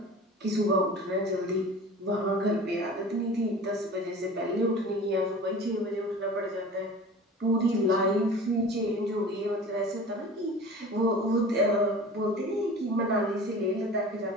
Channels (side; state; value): both; normal; correlation 0.39